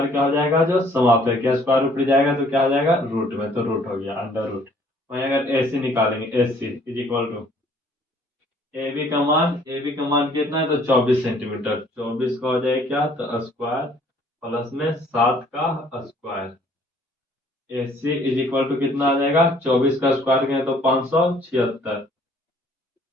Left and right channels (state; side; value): normal; both; correlation 0.59